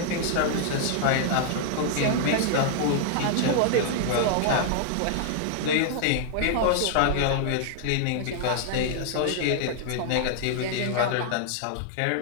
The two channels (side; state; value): both; different; correlation 0.00